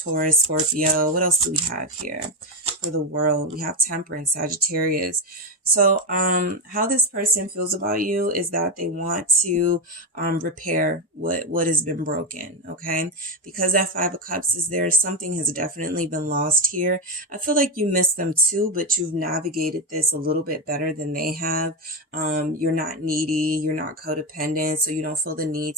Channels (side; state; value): both; normal; correlation 0.13